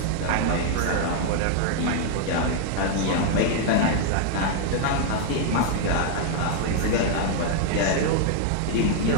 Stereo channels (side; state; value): both; different; correlation 0.00